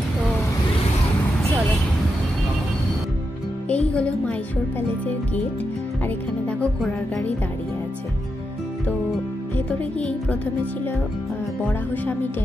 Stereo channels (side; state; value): both; normal; correlation 0.85